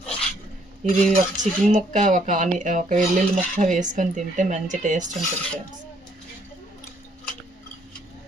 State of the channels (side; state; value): both; normal; correlation 0.67